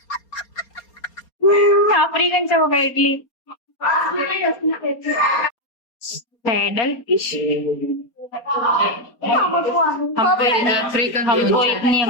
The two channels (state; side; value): late; right; 4.3 ms